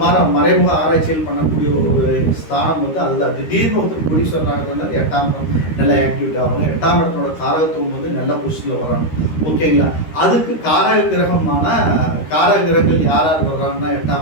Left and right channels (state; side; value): late; right; 13 ms